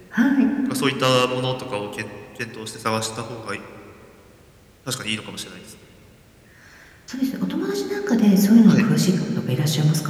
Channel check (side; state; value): both; identical; correlation 1.00